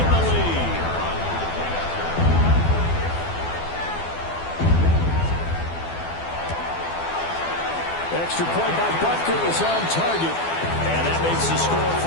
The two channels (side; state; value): right; late; 12 ms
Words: the lead. Extra point by Butker is on target. And that makes the score